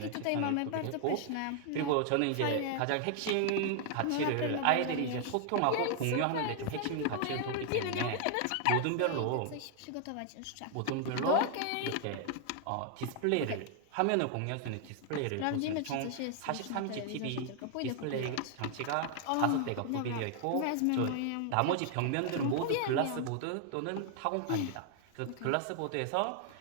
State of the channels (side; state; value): both; different; correlation 0.00